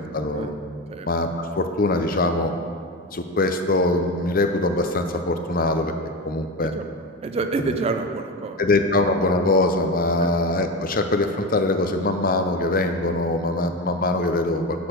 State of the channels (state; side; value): normal; both; correlation 0.22